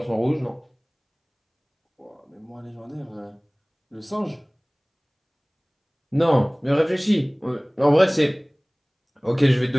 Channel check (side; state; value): both; identical; correlation 1.00